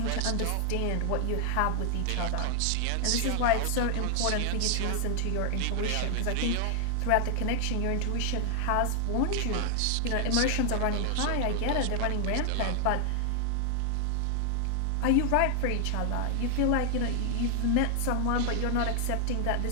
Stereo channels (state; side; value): different; both; correlation 0.00